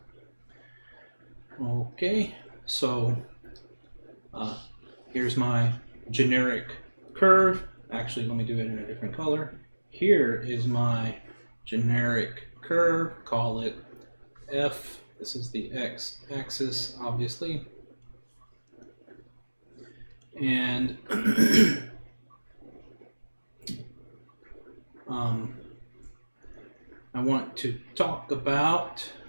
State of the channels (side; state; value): both; inverted; correlation -1.00